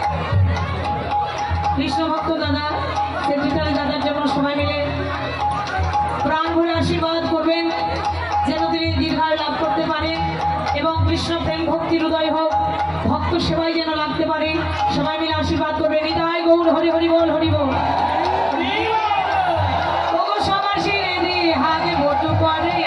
কৃষ্ণ ভক্ত দাদা, সেক্রেটারি দাদার জন্য সবাই মিলে প্রাণ ভরে আশীর্বাদ করবেন, যেন তিনি দীর্ঘায়ু লাভ করতে পারেন এবং কৃষ্ণ প্রেম ভক্তির হৃদয় হোক, ভক্ত সেবাই যেন লাগতে পারে। সবাই মিলে আশীর্বাদ করবেন। নিতাই গৌর হরি হরি বল, হরি বল।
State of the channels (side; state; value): both; identical; correlation 1.00